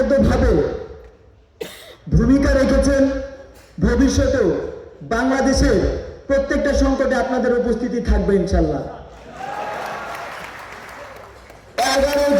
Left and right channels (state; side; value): identical; both; correlation 1.00